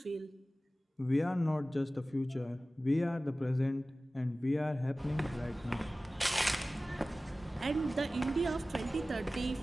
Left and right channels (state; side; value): normal; both; correlation 0.96